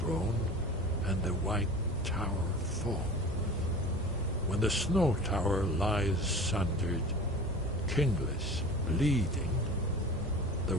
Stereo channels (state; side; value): normal; both; correlation 0.38